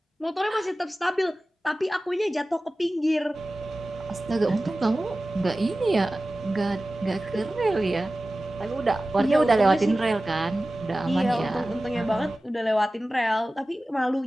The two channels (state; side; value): normal; both; correlation 0.96